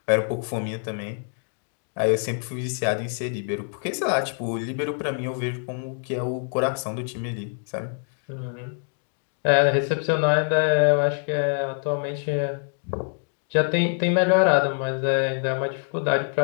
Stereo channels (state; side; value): silent; right; 55 dB below the other